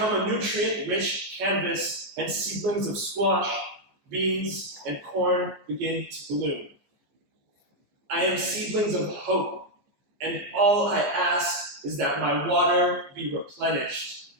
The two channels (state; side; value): late; left; 14 ms